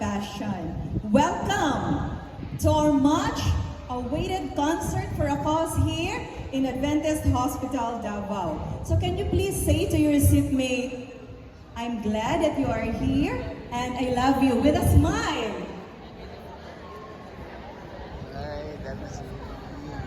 Welcome to our much awaited concert for a cause here in Adventist Hospital, Davao. So can you please say to your seatmate, I'm glad that you are here and I love you with a smile.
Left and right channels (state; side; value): identical; both; correlation 1.00